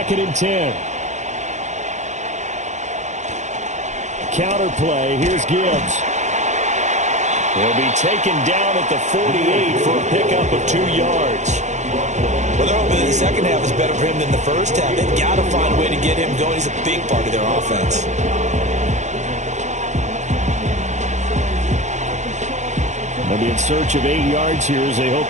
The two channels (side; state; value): left; late; 0.34 ms